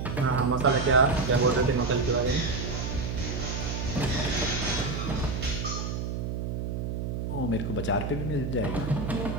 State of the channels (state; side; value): noise; right; hum, 3 dB below the sound